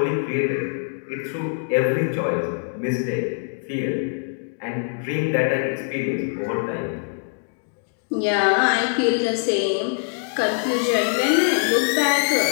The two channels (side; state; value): right; silent; digital silence